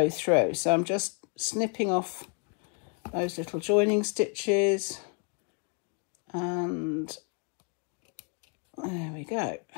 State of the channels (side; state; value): right; quieter; 35.8 dB